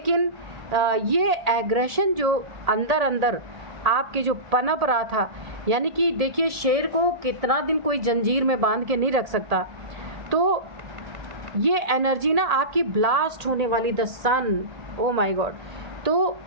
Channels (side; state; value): left; late; 1.7 ms